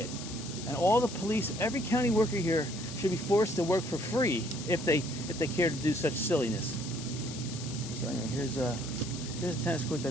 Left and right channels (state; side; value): noise; left; hiss, 11 dB below the sound